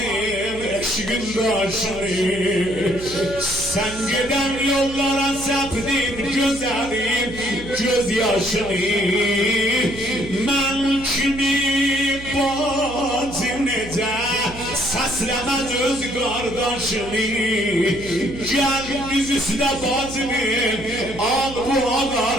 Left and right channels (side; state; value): right; noise; hum, 14 dB below the sound